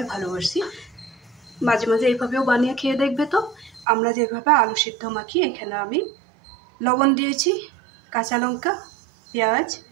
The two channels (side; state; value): left; drops out; at 3.9 s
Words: ভালোবাসি, মাঝে মাঝে এইভাবেও বানিয়ে খেয়ে দেখবে। তো আমরা যেভাবে আলু সিদ্ধ মাখি, এখানে আমি লবণ দিয়েছি, কাঁচা লঙ্কা, পেঁয়াজ,